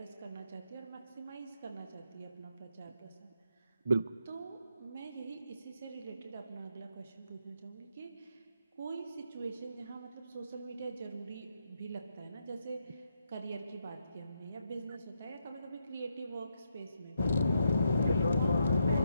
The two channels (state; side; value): inverted; both; correlation -0.80